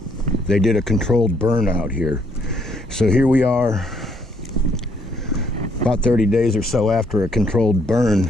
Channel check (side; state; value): both; normal; correlation 0.69